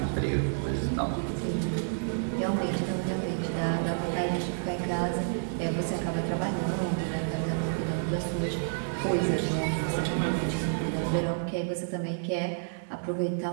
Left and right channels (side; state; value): left; silent; 58 dB below the other